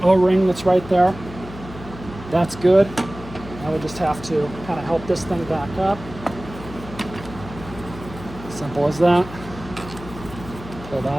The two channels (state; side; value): noise; left; hum, 14 dB below the sound